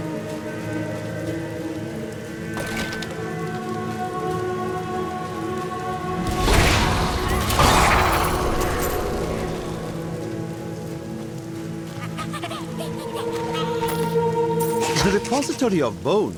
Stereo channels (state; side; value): identical; both; correlation 1.00